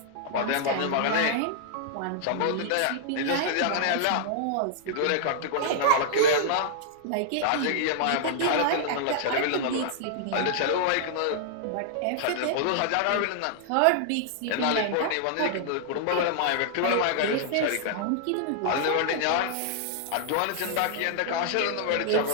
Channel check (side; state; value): both; different; correlation -0.01